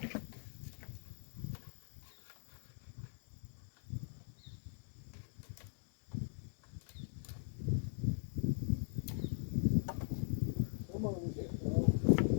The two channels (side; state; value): right; silent; 51 dB below the other